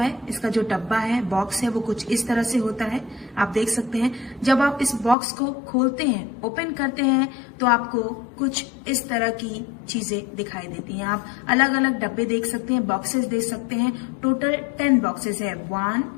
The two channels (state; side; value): drops out; right; at 5.2 s